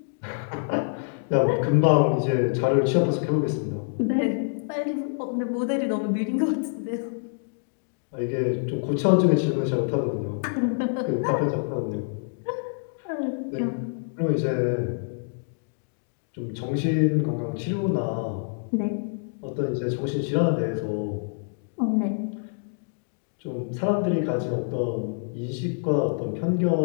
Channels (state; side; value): silent; right; digital silence